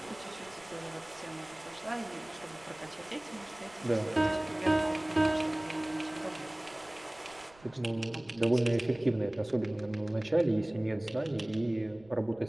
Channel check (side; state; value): right; noise; rumble, 26 dB below the sound